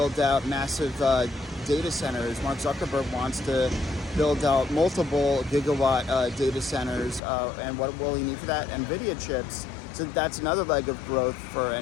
out massive data centers. Mark Zuckerberg wants to build out multiple gigawatt data centers, and what will he need for that? Nvidia chips. So that's another leg of growth for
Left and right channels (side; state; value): right; drops out; at 7.2 s